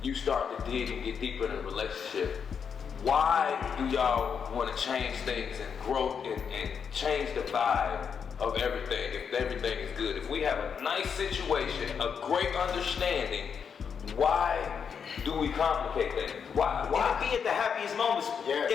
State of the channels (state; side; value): quieter; right; 6.8 dB